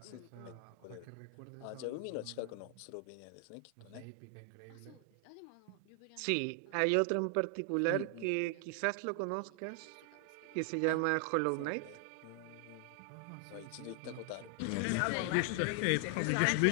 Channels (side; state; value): both; different; correlation 0.00